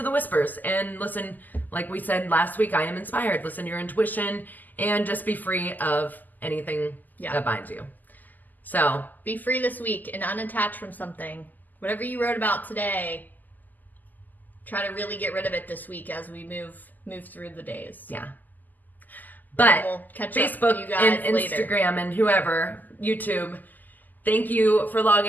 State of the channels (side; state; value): right; late; 0.084 ms